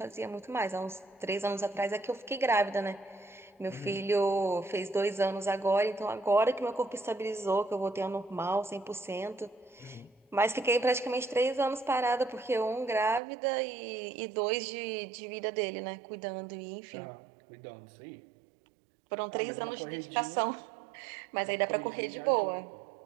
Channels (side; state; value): left; drops out; at 13.2 s